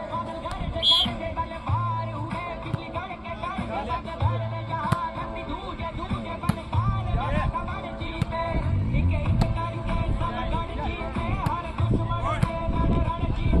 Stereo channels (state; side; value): identical; both; correlation 1.00